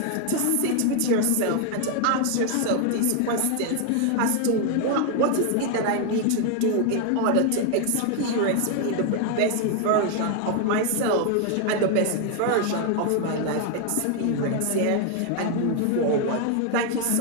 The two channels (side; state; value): both; different; correlation 0.00